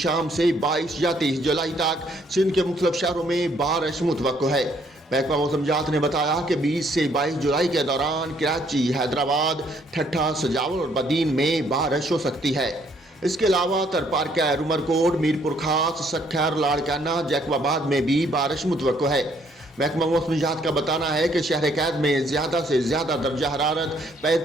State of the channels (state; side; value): normal; both; correlation 0.67